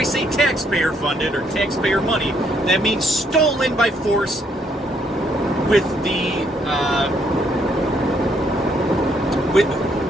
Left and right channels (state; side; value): normal; both; correlation 0.70